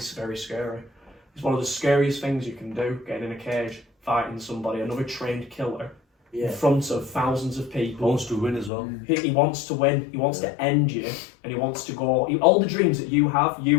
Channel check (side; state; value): right; drops out; at 8.7 s